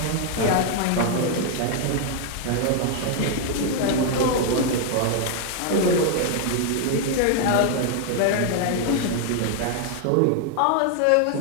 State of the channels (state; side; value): different; both; correlation 0.00